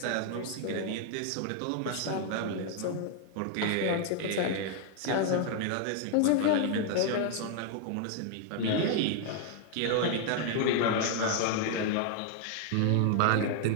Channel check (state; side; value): different; both; correlation 0.00